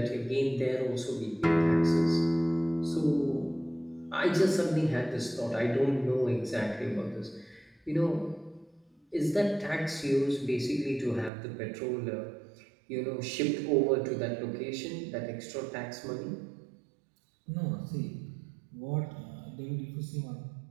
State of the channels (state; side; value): drops out; left; at 11.3 s